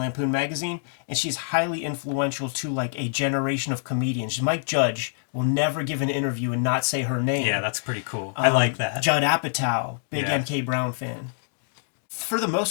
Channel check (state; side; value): silent; right; digital silence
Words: magazine, and she's highly influential to like a generation of comedians. Mike Judge will never give an interview and not say her name. Yeah, that's pretty cool. I like that. Judd Apatow, big Yeah. M.K. Brown fan. For the